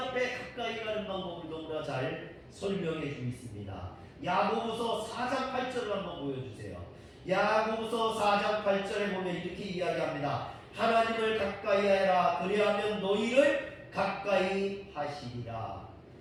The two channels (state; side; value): identical; both; correlation 1.00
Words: 가까이 가는 방법을 너무나 잘 설명해 주고 있습니다. 야고보서 4장 8절을 한번 보여주세요. 야고보서 4장 8절에 보면 이렇게 이야기합니다. 하나님을 가까이 하라. 그리하면 너희를 가까이 하시리라.